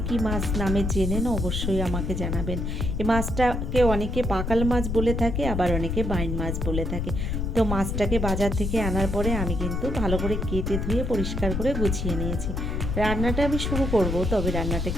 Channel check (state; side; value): noise; left; rumble, 1 dB below the sound